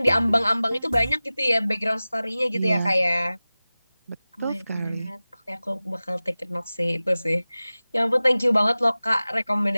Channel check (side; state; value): both; inverted; correlation -0.97